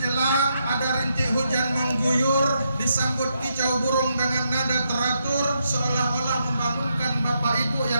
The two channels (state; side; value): inverted; both; correlation -0.80